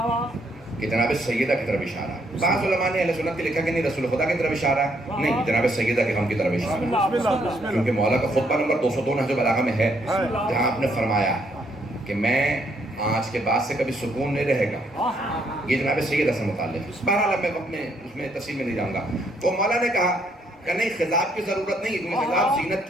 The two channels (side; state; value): both; normal; correlation 0.71